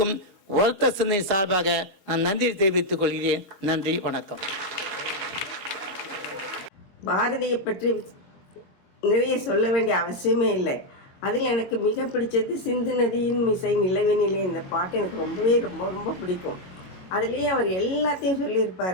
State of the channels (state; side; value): late; right; 22 ms